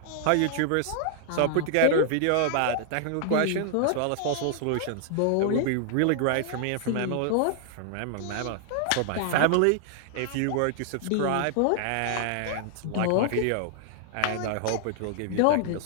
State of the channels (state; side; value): different; both; correlation 0.00